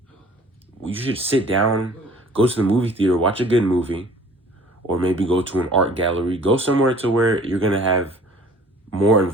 You should sit down, go to the movie theater, watch a good movie, or maybe go to an art gallery, go somewhere to where you're going to have more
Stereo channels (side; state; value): both; normal; correlation 0.51